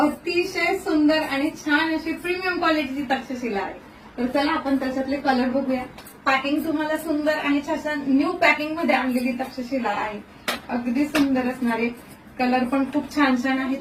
अतिशय सुंदर आणि छान अशी प्रीमियम क्वालिटीची तक्षशिला आहे. तर चला आपण त्याच्यातले कलर बघूया. पॅकिंग तुम्हाला सुंदर आणि छान न्यू पॅकिंग मध्ये आणलेली तक्षशिला आहे. अगदी सुंदर असणारे कलर पण खूप छान छान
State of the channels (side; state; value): both; identical; correlation 1.00